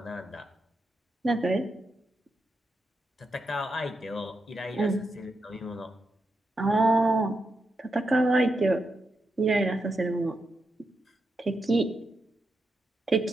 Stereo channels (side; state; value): both; normal; correlation 0.85